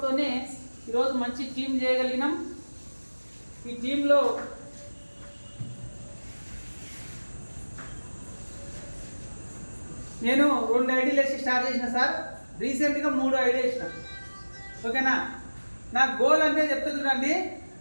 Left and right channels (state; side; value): inverted; both; correlation -1.00